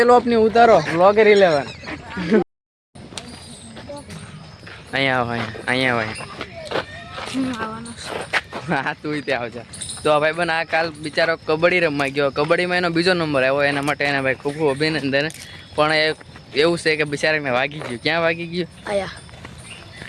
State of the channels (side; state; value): both; identical; correlation 1.00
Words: ચલો अपनी ઉતારો વ્લોગર 11. અહીંયા આવો અહીંયા હા તું ત્યાં આવજા. તો ભાઈ બન આ કાલ બિચારો કબડ્ડી રમવા ગયો. કબડ્ડીમાં એનો બીજો નંબર આવ્યો. એના માટે એને ભાઈ ખૂબ ખૂબ અભિનંદન. પણ એવું છે કે બિચારાને વાગી ગયું. ક્યાં વાગી ગયું?